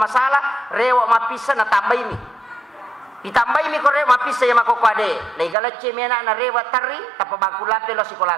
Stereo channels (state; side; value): drops out; left; at 5.6 s